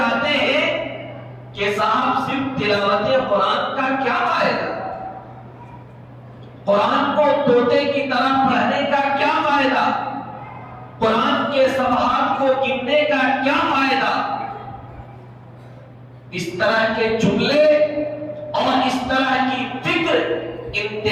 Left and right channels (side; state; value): both; identical; correlation 1.00